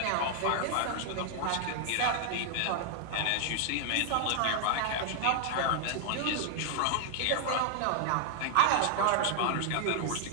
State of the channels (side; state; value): both; different; correlation 0.00